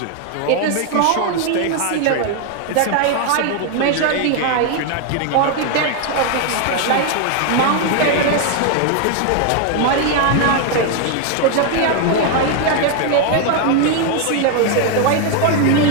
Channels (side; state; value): both; different; correlation 0.01